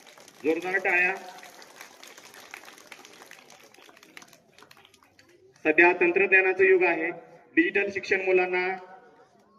जोरदार टाळ्या। सध्या तंत्रज्ञानाचं युग आहे, डिजिटल शिक्षण मुलांना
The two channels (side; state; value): both; identical; correlation 1.00